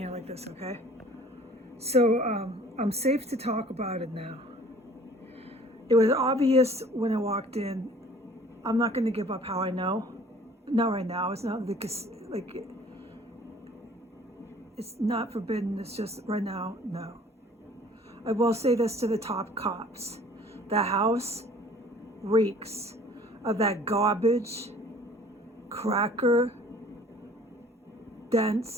like this, okay? So I'm safe to talk about it now. It was obvious when I walked in. I'm not going to give up how I know. Not right now. It's not like it's not forbidden. It's just right now, no. I will say this to the top cops. The house reeks of that garbage, cracker,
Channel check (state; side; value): normal; both; correlation 0.52